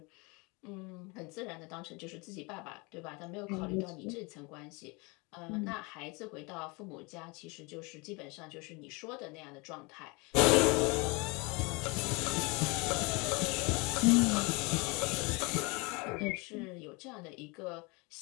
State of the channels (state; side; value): quieter; right; 28.0 dB